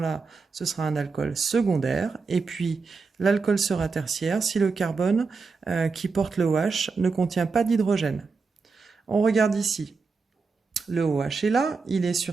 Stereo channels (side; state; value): left; quieter; 4.6 dB